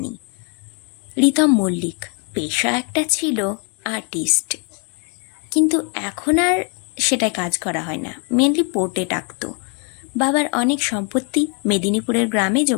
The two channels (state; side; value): quieter; right; 37.9 dB